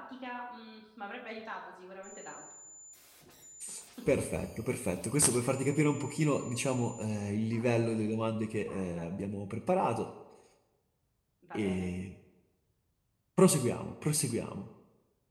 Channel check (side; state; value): both; identical; correlation 1.00